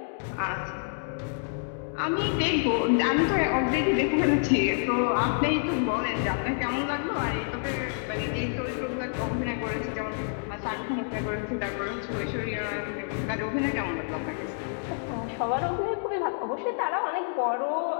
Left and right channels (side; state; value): right; silent; digital silence